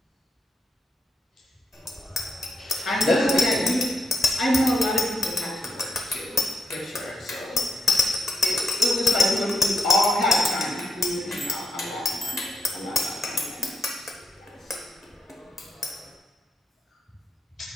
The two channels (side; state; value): both; normal; correlation 0.79